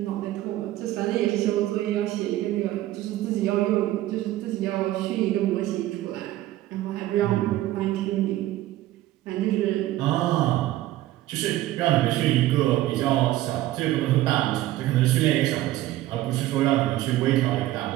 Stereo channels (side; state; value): left; quieter; 15.2 dB